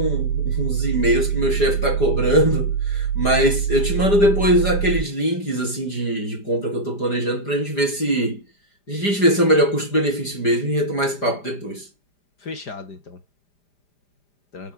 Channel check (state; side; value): late; right; 5.0 ms